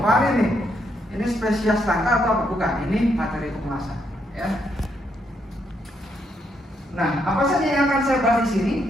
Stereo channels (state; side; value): normal; both; correlation 0.76